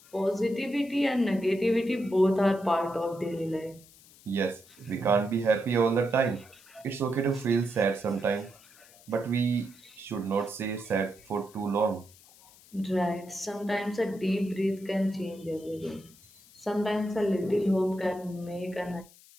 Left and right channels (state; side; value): noise; left; hiss, 24 dB below the sound